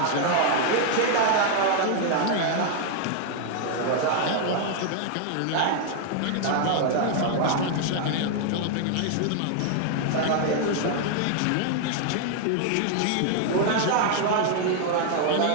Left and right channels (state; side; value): different; both; correlation 0.00